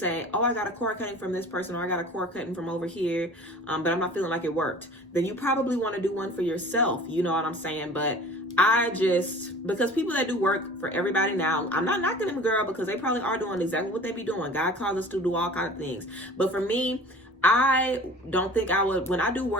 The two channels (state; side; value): normal; both; correlation 0.44